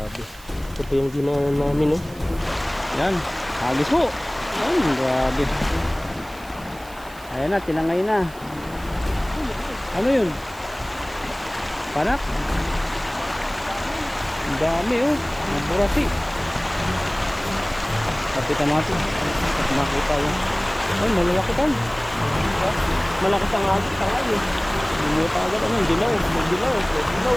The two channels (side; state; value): right; noise; hiss, 22 dB below the sound